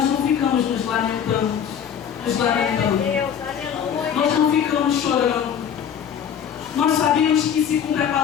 não ficamos nos lamentando. Nós não ficamos chorando. Nós sabemos que se cumpre a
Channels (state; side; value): quieter; right; 8.4 dB